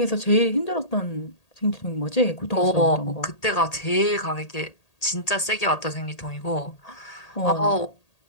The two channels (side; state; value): right; late; 1.8 ms